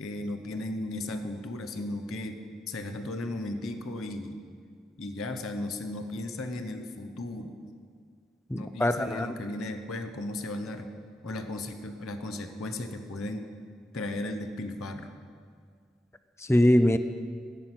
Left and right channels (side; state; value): both; normal; correlation 0.87